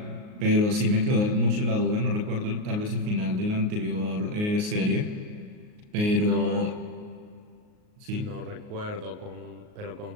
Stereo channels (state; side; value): late; left; 38 ms